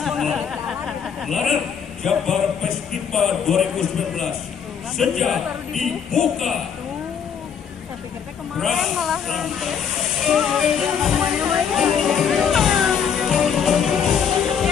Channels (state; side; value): quieter; right; 7.4 dB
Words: larang Jabar Festival 2019 sejak dibuka kemarin malah